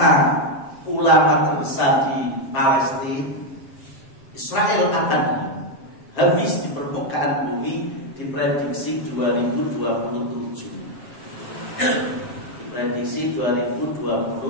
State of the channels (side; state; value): right; late; 7.3 ms